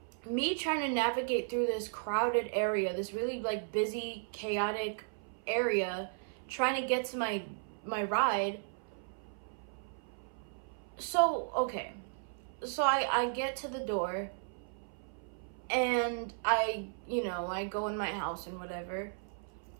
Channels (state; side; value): silent; left; 54 dB below the other